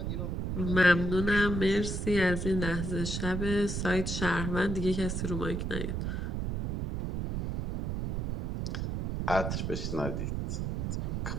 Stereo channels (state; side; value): noise; right; rumble, 2 dB below the sound